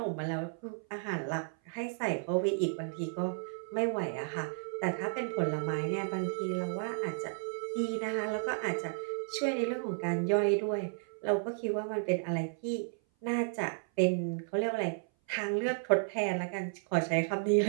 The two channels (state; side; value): silent; left; 56 dB below the other